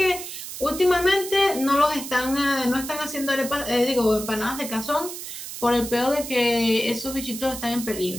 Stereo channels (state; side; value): noise; right; hiss, 9 dB below the sound